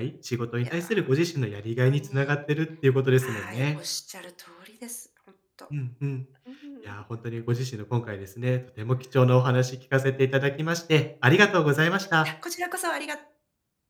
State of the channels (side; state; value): both; identical; correlation 1.00